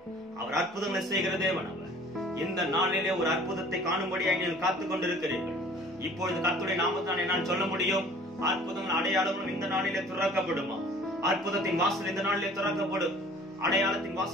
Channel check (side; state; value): both; normal; correlation 0.50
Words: அவர் அற்புதங்களை செய்கிற தேவன். அவர் இந்த நாளிலே ஒரு அற்புதத்தை காணும்படியாக நீங்கள் காத்துக் கொண்டிருக்கிறீர்கள். இப்பொழுது கர்த்தருடைய நாமத்தினாலே நான் சொல்ல முடியும், அற்புதங்கள் அடையாளங்களும் இந்த நாளிலே திறக்கப்படுமா? அற்புதத்தின் வாசல் இந்த நாளிலே திறக்கப்படும், அடையாளத்தின்